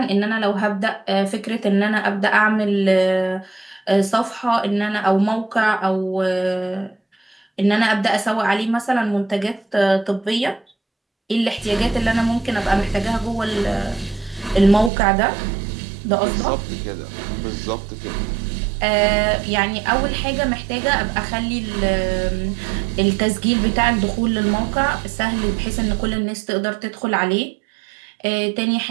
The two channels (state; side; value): drops out; left; at 14.9 s